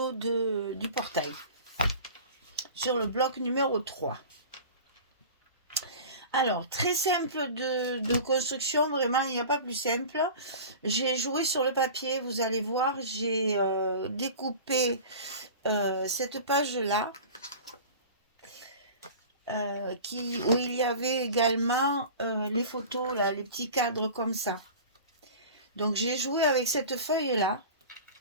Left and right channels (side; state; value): both; inverted; correlation -0.37